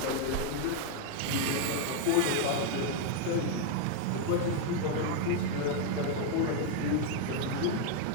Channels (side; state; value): both; different; correlation 0.01